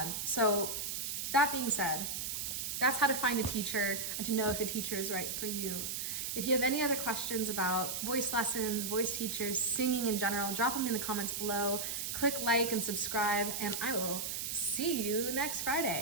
So that being said, that's how to find a teacher and to know if a teacher is right for you. If you have any other questions about voice lessons, voice teachers, singing in general, drop them in the comments below. Click like and subscribe, and I will see you next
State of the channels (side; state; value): right; noise; hiss, 3 dB below the sound